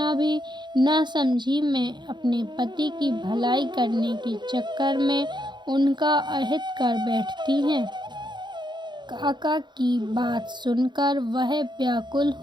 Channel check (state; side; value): late; left; 0.22 ms